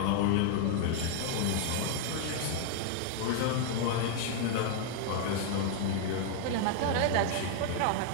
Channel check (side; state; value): both; different; correlation 0.00